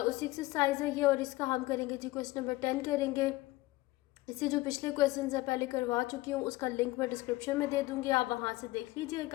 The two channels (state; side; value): quieter; right; 19.3 dB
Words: उसी एक्सरसाइज है ये। और इसका हम करेंगे जी क्वेश्चन नंबर 10 करेंगे। इससे जो पिछले क्वेश्चन है पहले करवा चुकी हूँ, उसका लिंक मैं डिस्क्रिप्शन में दे दूँगी, आप वहाँ से देख